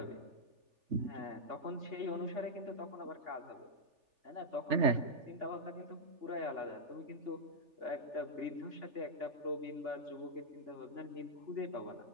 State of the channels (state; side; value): late; left; 3.4 ms